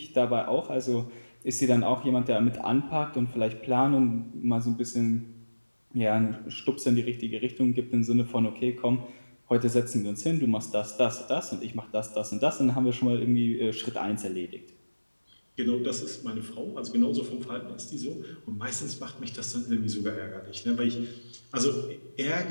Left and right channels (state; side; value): inverted; both; correlation -1.00